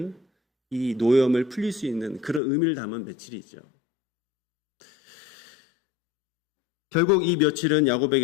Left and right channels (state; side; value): drops out; right; at 2.4 s